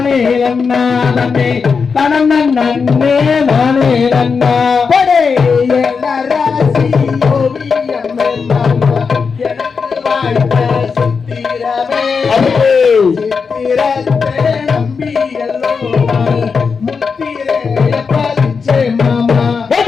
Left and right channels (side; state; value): right; quieter; 5.4 dB